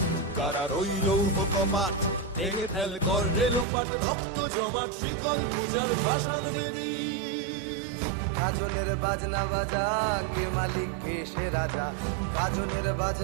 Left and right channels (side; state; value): left; drops out; at 3.7 s